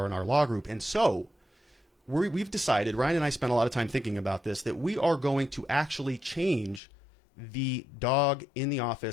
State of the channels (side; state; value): right; drops out; at 6.8 s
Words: Law Group. And so we've decided, Ryan and I spent a lot of time thinking about this, that we are going to actually change the dog in the